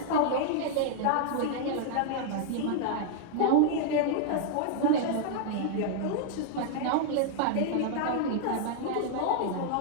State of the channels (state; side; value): different; both; correlation -0.01